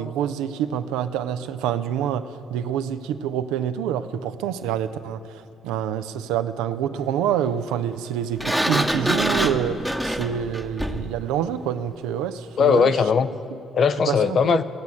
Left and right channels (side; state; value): both; normal; correlation 0.57